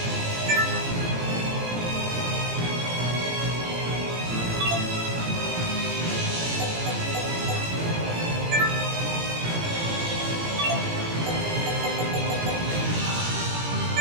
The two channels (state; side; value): late; left; 17 ms